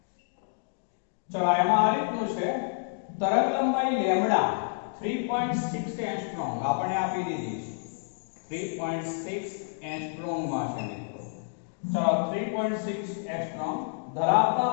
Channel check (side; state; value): right; silent; digital silence